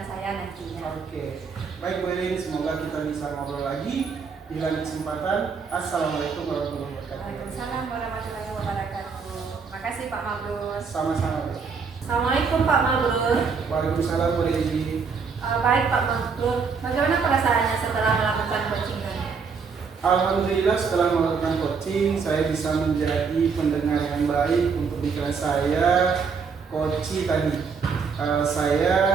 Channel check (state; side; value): quieter; left; 5.5 dB